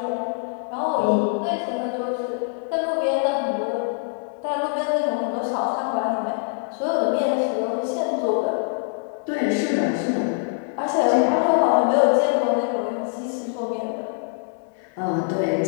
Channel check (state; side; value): silent; right; 63 dB below the other